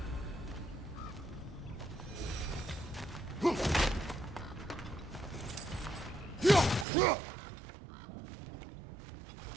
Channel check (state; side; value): drops out; left; at 6.9 s